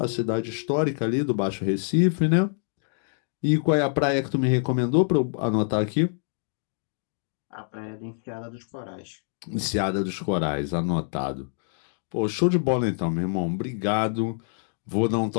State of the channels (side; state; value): right; silent; digital silence